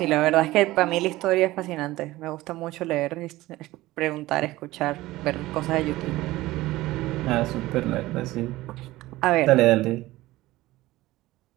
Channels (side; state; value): left; quieter; 17.8 dB